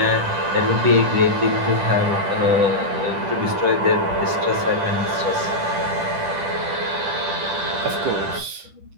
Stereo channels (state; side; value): late; left; 10 ms